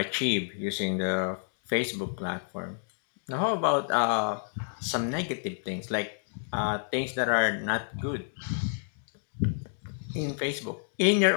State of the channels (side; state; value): right; silent; digital silence